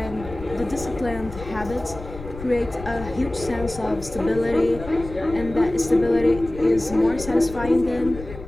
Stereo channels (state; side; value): noise; left; rumble, 13 dB below the sound